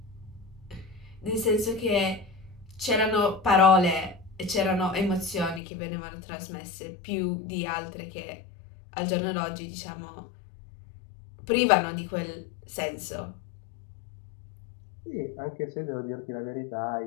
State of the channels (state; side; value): drops out; right; at 5.6 s